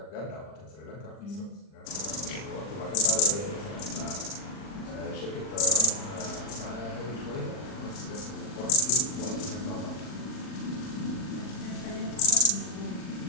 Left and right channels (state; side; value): late; right; 40 ms